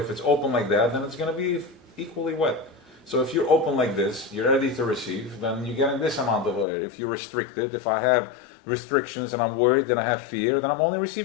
if it's open like that, then it's going to be equally wet. So if you're open like this, you're ready to receive, then you're getting this amount of water. If you're restricted, if I have restrictions and I'm worried, then I have fear, then I'm only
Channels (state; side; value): drops out; right; at 6.7 s